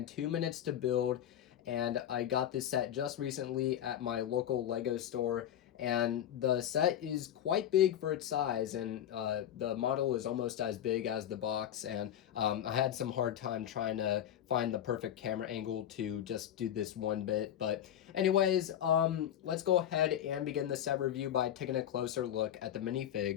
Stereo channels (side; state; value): right; quieter; 10.7 dB